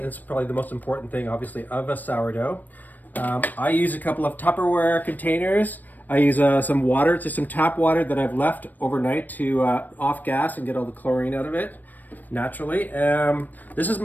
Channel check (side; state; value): right; late; 0.086 ms